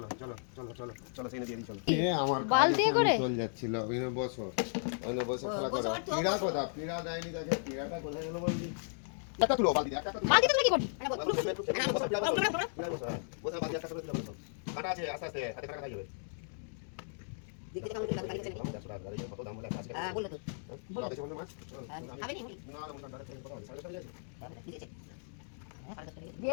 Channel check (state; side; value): silent; right; digital silence